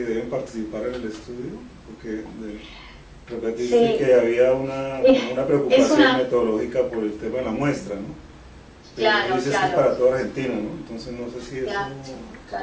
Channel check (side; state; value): both; identical; correlation 1.00